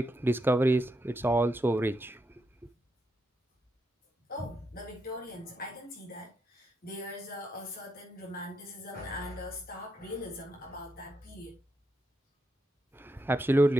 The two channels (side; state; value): both; normal; correlation 0.82